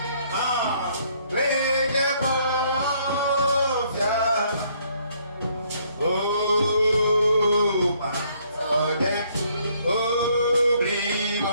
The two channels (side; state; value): both; inverted; correlation -0.67